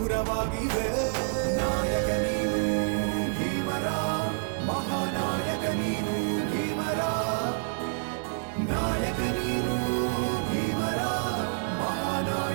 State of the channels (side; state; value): left; silent; 59 dB below the other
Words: ನಾಯಕ ನೀನು ಭೀಮರ, ಮಹಾನಾಯಕ ನೀನು ಭೀಮರ, ನಾಯಕ ನೀನು ಭೀಮರ,